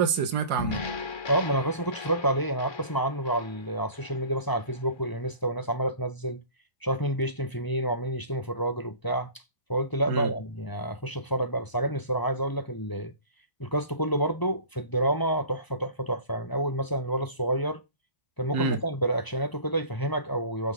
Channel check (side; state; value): right; late; 1.0 ms